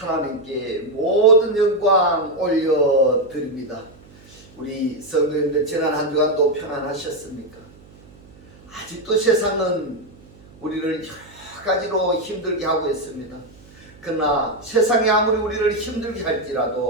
모든 영광 올려드립니다. 우리 성도님들 지난 한 주간도 평안하셨습니까? 아직도 세상은 우리를 여러 가지로 힘들게 하고 있습니다. 그러나 세상이 아무리 우리를 힘들게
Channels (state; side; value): noise; right; hum, 24 dB below the sound